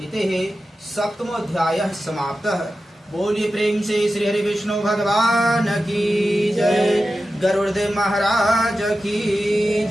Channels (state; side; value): normal; both; correlation 0.93